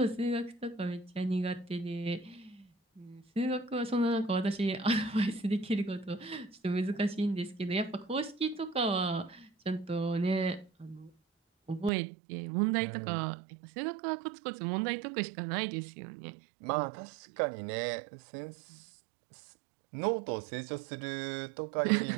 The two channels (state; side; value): drops out; left; at 11.9 s